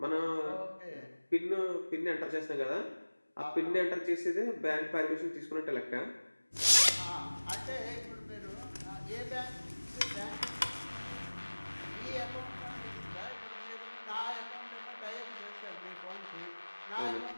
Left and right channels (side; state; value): both; inverted; correlation -1.00